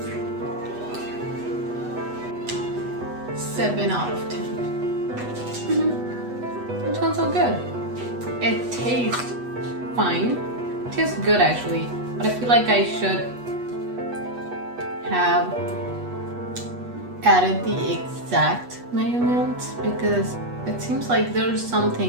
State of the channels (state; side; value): late; left; 8.2 ms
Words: Seven out of 10. It sounds so good. It tastes fine. It tastes good actually, but I feel like I should have added the exact measurements, because it seems like there's